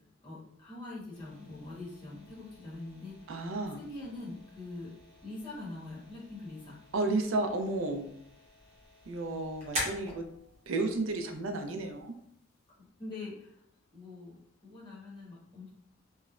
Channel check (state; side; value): normal; both; correlation 0.24